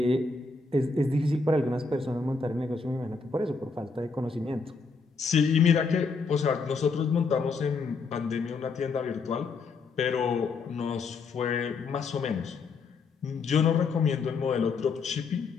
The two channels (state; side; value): quieter; right; 4.5 dB